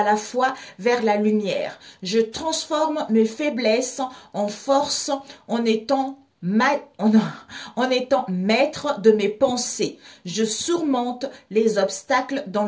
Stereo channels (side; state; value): both; identical; correlation 1.00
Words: la fois vers la lumière. Je transforme mes faiblesses en force en étant maître de mes pensées. Je surmonte les obstacles dans